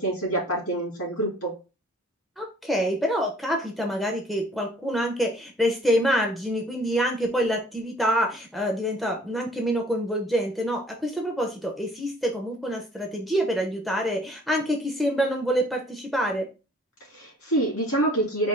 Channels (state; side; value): normal; both; correlation 0.55